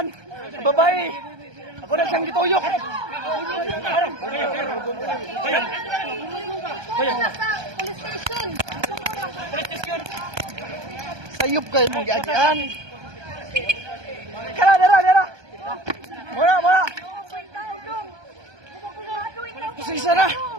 Babae! Ako na siyang gituyok! Sayop kayo mong giagian! Kala, dara, dara! Muna, muna! Kusisa na!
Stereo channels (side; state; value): left; late; 1.2 ms